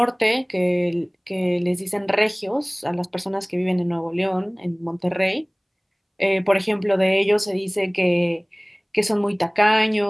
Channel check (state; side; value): identical; both; correlation 1.00